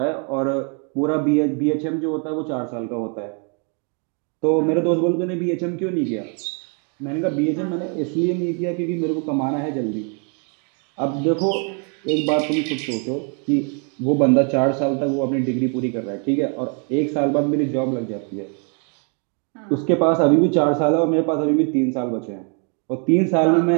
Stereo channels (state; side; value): quieter; left; 39.3 dB